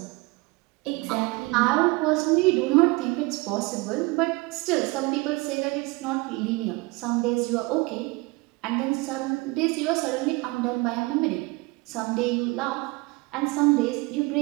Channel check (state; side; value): quieter; left; 24.6 dB